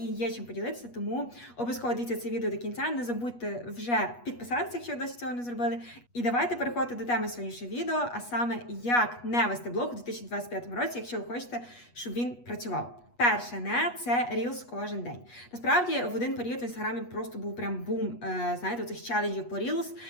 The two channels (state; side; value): late; right; 8.3 ms